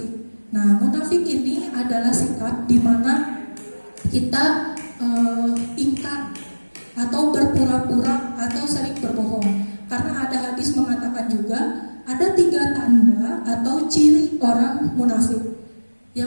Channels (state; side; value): inverted; both; correlation -1.00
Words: Nah, munafik ini adalah sikap di mana kita ingkar atau berpura-pura atau sering berbohong. Karena ada hadis mengatakan juga ada 3 tanda atau ciri orang munafik.